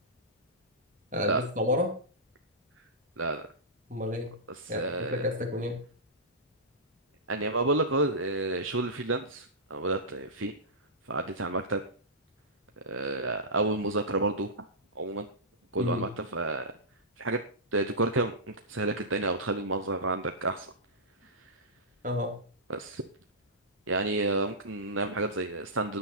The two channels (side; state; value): both; normal; correlation -0.17